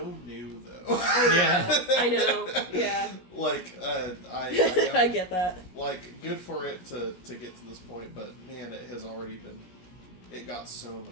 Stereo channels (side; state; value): right; late; 17 ms